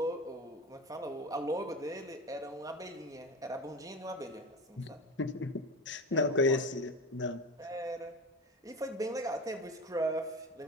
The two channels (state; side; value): normal; both; correlation 0.27